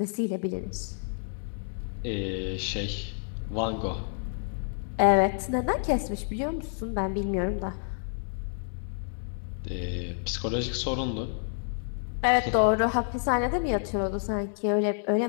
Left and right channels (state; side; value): silent; right; digital silence